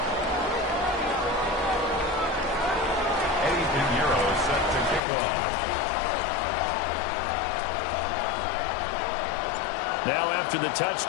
Eddie Piñeiro set to kick off. Now after the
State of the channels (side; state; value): right; drops out; at 5.0 s